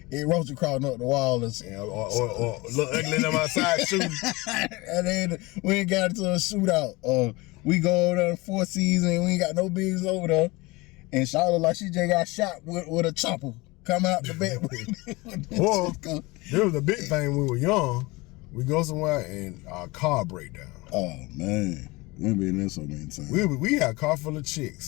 it rolled across up the wall or look ugly in my side shooting. And then we ain't got into a shootout. Or we go over there to Four Seasons and we ain't got no bigs over there. And Charlotte like she just got shot with a chopper. Come out the bed. Or there was a big thing when we were young. We go somewhere and our car break down. Oh man, we've been there so many times. We had a car full of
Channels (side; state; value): right; quieter; 23.2 dB